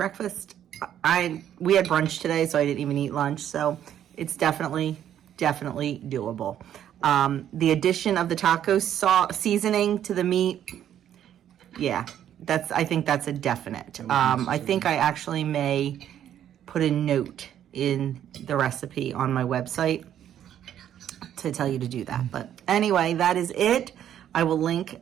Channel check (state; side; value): quieter; left; 10.5 dB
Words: We had brunch today, so I didn't even eat lunch. So it's definitely doable. The addition of the taco seasoning to the meat, yeah, I think that's a definite. I think I actually may put a note in the recipe on my website to tell you to do that. But anyway, that is it. I will